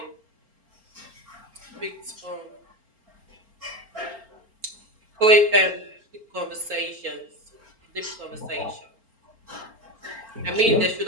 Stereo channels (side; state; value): left; late; 4.4 ms